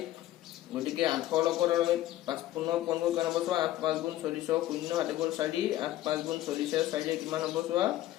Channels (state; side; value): quieter; right; 14.2 dB